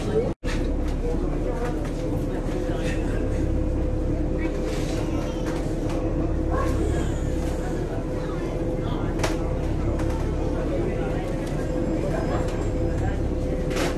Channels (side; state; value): both; identical; correlation 1.00